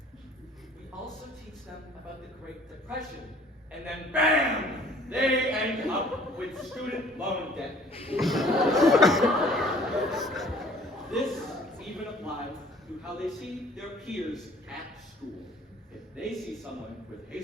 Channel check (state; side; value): normal; both; correlation 0.54